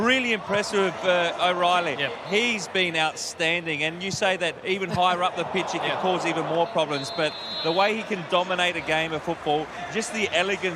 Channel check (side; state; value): both; identical; correlation 1.00